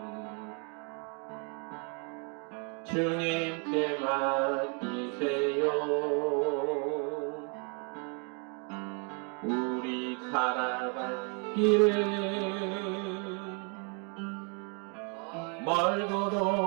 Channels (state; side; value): quieter; left; 37.7 dB